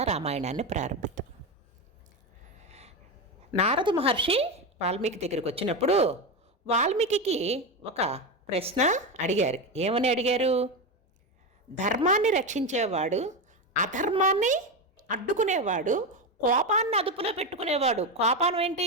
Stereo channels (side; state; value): both; normal; correlation 0.15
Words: రామాయణాన్ని ప్రారంభిద్దాం. నారద మహర్షి వాల్మీకి దగ్గరికి వచ్చినప్పుడు వాల్మీకి ఒక ప్రశ్న అడిగారు. ఏమని అడిగారు? ధర్మాన్ని రక్షించేవాడు, అధర్మాన్ని అడ్డుకునేవాడు, కోపాన్ని అదుపులో పెట్టుకునేవాడు. కోపం ఏంటి?